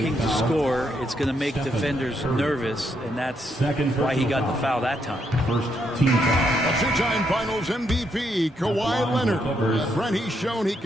to score. It's going to make defenders nervous, and that's why he got the foul that time. First team foul. A two-time Finals MVP, Kawhi Leonard. Brent, he's shown he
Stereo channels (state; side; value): normal; both; correlation 0.77